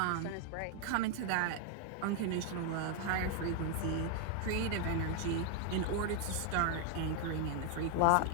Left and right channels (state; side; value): different; both; correlation 0.00